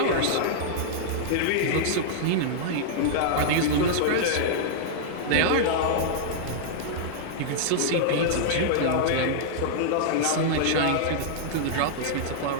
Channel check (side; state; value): both; different; correlation -0.02